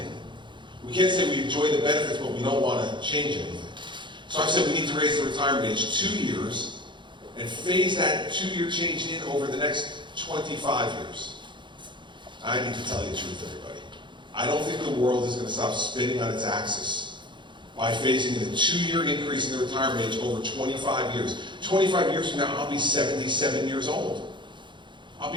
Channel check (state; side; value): late; left; 0.23 ms